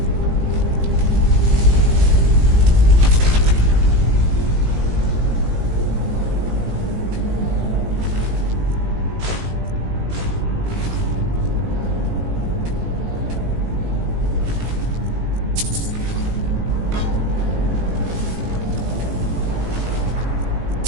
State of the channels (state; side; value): late; left; 18 ms